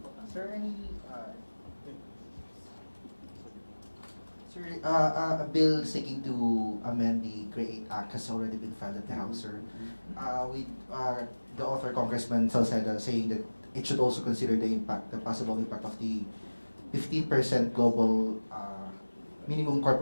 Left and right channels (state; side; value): inverted; both; correlation -1.00